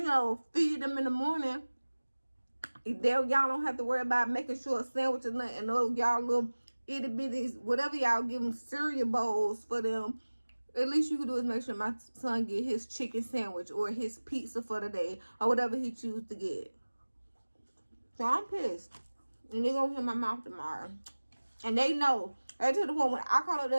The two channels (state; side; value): inverted; both; correlation -1.00